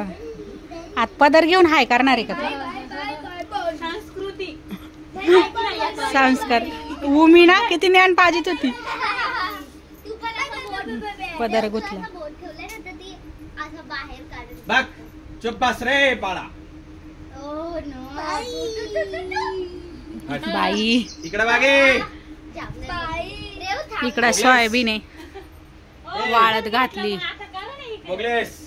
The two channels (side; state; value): both; identical; correlation 1.00